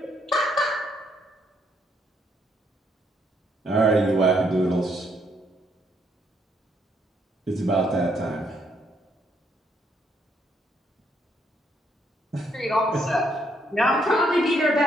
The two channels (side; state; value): both; normal; correlation 0.72